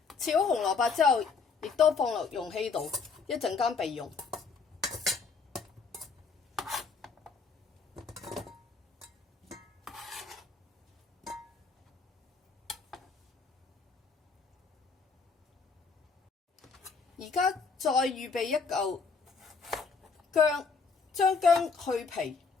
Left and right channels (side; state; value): right; quieter; 5.0 dB